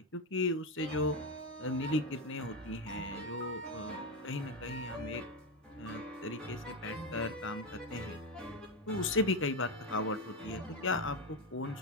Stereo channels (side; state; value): both; normal; correlation 0.11